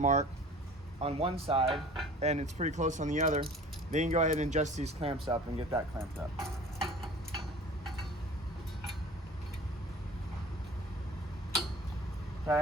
on one side, and it's pretty close on the other, then you can go ahead and adjust these clamps up and get that clamped up.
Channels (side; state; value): both; normal; correlation 0.44